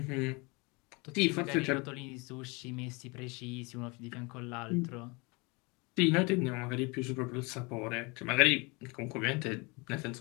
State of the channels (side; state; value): right; quieter; 27.9 dB